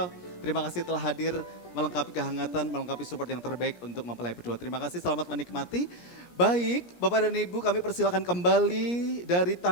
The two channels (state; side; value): late; right; 17 ms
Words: terima kasih telah hadir melengkapi kehangatan, melengkapi support yang terbaik untuk mempelai berdua. Terima kasih, selamat menikmati. Baik, Bapak dan Ibu, kami persilakan kembali dari